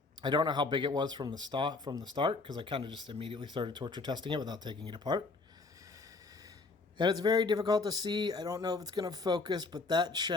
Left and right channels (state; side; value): quieter; right; 3.8 dB